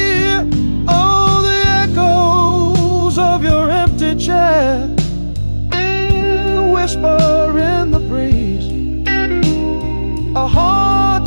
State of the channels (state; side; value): inverted; both; correlation -1.00